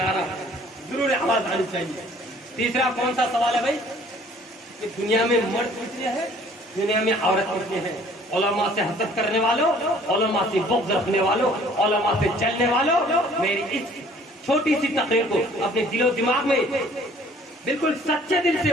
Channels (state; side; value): normal; both; correlation 0.55